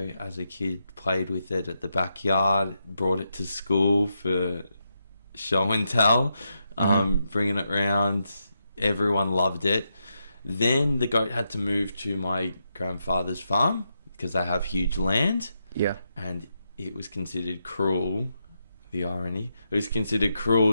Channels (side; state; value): both; inverted; correlation -0.84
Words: as a kid, played with it at the backyard, brought it to school for show and tell, bringing it around. Everyone loved it. Then the goat had to move to my grandfather's farm because they have huge land. Yeah. And it was considered cruel, the irony. It was considered